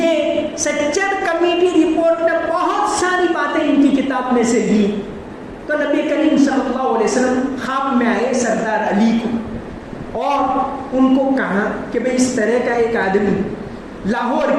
سچر کمیٹی رپورٹ نے بہت ساری باتیں ان کی کتاب میں سے لی. تو نبی کریم صلی اللہ علیہ وسلم خواب میں آئے سردار علی کو اور ان کو کہا کہ بھئی اس طرح کا ایک آدمی لاہور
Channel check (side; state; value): both; identical; correlation 1.00